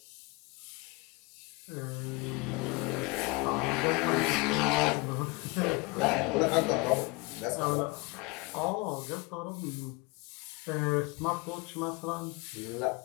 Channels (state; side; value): quieter; right; 25.7 dB